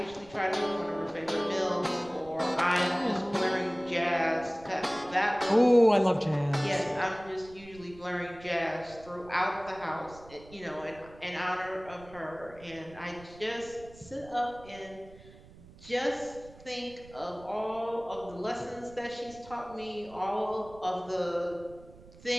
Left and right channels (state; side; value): noise; right; rumble, 21 dB below the sound